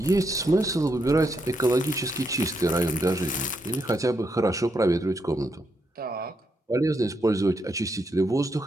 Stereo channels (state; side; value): normal; both; correlation 0.79